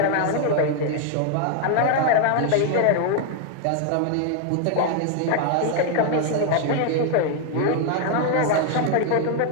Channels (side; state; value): both; different; correlation 0.00